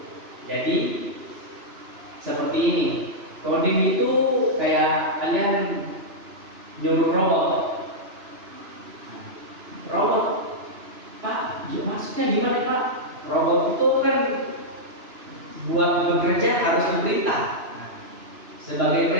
Jadi seperti ini. Coding itu kayak kalian nyuruh robot. Robot, Pak, maksudnya gimana Pak? Robot itu kan buat bekerja harus diperintah. Nah, sebagai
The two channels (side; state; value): left; late; 2.9 ms